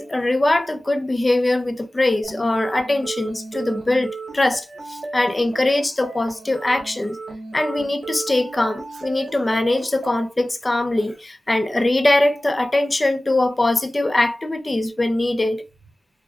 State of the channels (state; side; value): normal; both; correlation 0.97